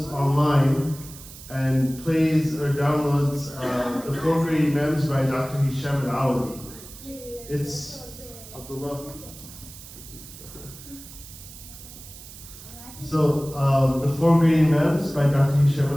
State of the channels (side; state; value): right; noise; hiss, 16 dB below the sound